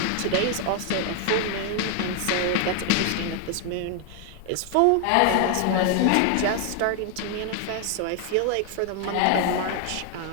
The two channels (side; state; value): both; different; correlation 0.00